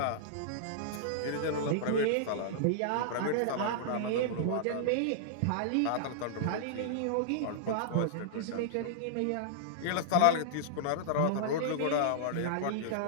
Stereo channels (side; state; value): both; different; correlation -0.02